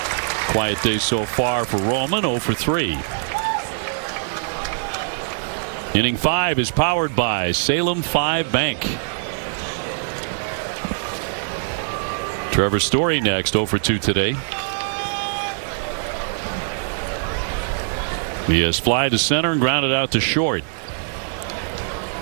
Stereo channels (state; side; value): silent; left; digital silence